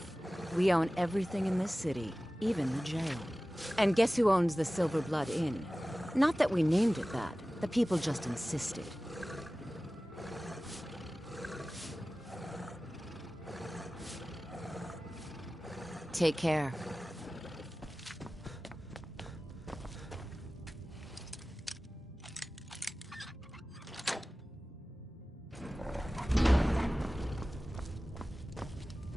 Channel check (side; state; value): both; normal; correlation 0.97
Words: We own everything in this city, even the jail. And guess who owns the Silver Blood Inn? Not that we named it that. The people just insisted. Take care.